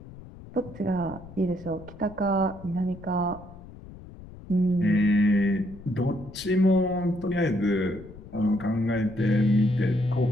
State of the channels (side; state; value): left; noise; rumble, 17 dB below the sound